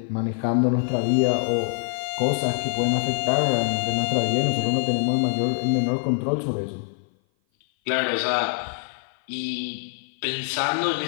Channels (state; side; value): silent; right; 57 dB below the other